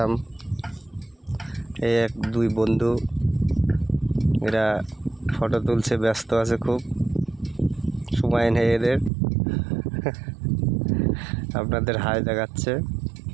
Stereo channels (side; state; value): left; drops out; at 9.1 s